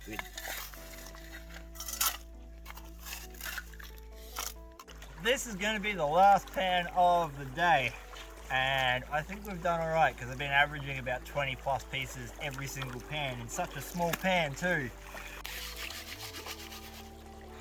Good. This is going to be the last pan of the day, and I think we've done alright because I've been averaging about 20 plus pieces every single pan in such a small pan too.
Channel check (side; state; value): both; identical; correlation 1.00